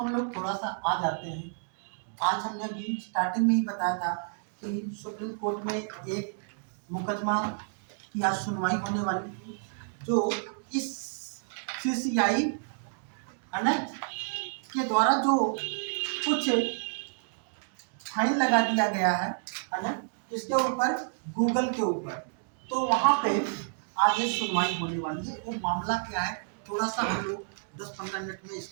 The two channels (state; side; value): silent; left; digital silence